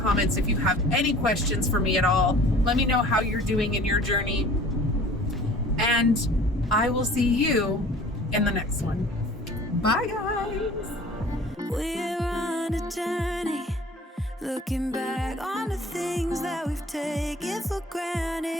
if you have any questions for me at all. Let me know how you're doing in your journey. And I will see you in the next one. Bye, guys. We're on a journey, looking back on the things that we've taken for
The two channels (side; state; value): both; normal; correlation 0.47